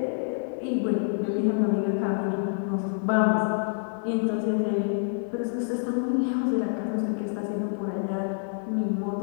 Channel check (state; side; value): silent; right; 60 dB below the other